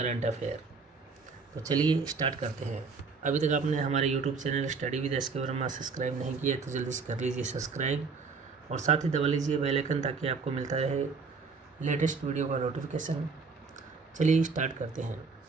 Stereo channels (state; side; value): quieter; left; 4.8 dB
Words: अफेयर। तो चलिए स्टार्ट करते हैं। अभी तक आपने हमारे YouTube channel study with S के वर्मा सब्सक्राइब नहीं किया तो जल्दी से कर लीजिए सब्सक्राइब, और साथ ही दबा लीजिए बेल आइकन ताकि आपको मिलता रहे लेटेस्ट वीडियो का नोटिफिकेशन। चलिए स्टार्ट करते हैं।